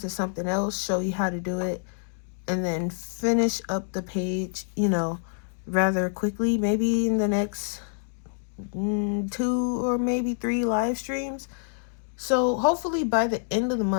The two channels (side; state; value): right; silent; digital silence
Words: something else, show you how to do it, and then finish up the page, you know, rather quickly, maybe in the next 2 or maybe 3 live streams. So hopefully by the end of the